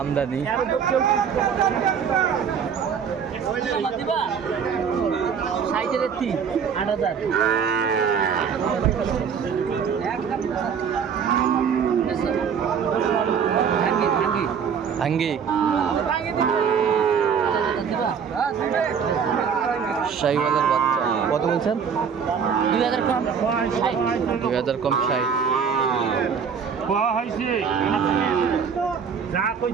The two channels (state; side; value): quieter; left; 6.9 dB